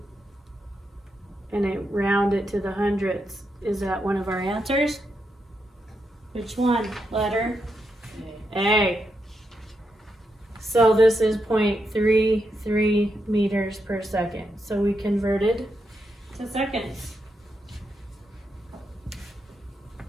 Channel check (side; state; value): both; normal; correlation 0.83